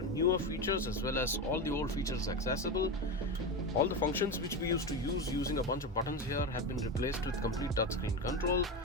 newer features as well as all the old features accessible. All the functions which we used to use using a bunch of buttons here have been replaced with complete touchscreen control.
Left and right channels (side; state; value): both; normal; correlation 0.18